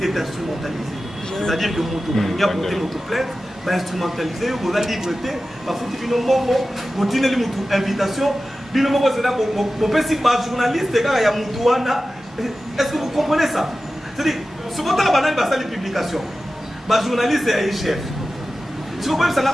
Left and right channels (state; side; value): normal; both; correlation 0.94